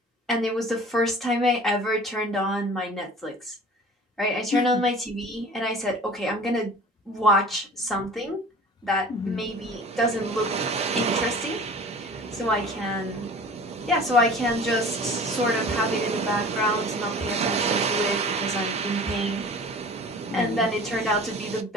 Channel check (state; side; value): normal; both; correlation 0.43